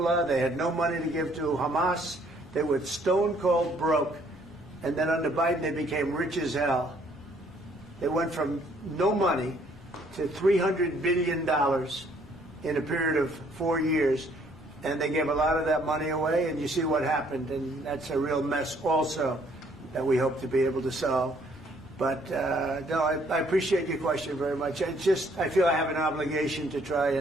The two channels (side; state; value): both; normal; correlation 0.64